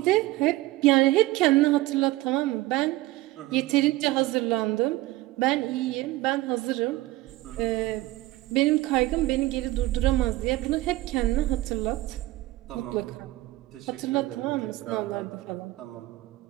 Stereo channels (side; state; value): left; quieter; 18.1 dB